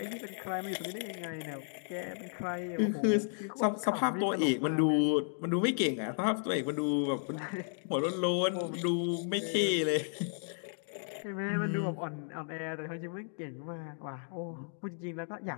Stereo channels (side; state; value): right; silent; digital silence